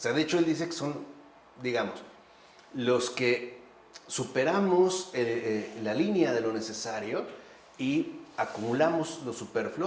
de hecho él dice que son, digamos, los que superamos la línea de lo necesario y acumulamos lo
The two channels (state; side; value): identical; both; correlation 1.00